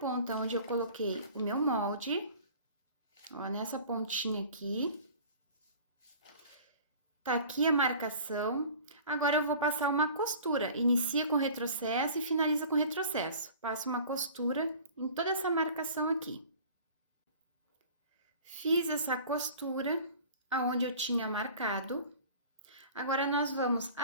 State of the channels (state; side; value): inverted; both; correlation -0.44